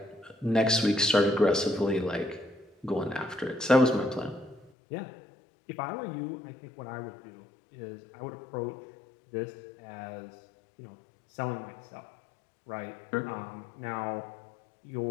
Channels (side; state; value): right; drops out; at 4.7 s